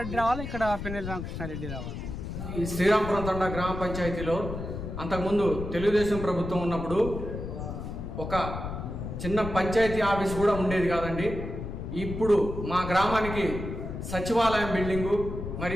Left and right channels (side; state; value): left; noise; rumble, 6 dB below the sound